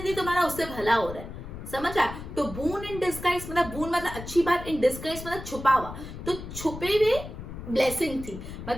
तुम्हारा उससे भला हो रहा है, समझ आया? तो बून इन डिस्गाइज मतलब बून मतलब अच्छी बात, इन डिस्गाइज मतलब छुपा हुआ, तो छुपे हुए ब्लेसिंग थी। मतलब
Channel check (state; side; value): noise; left; rumble, 10 dB below the sound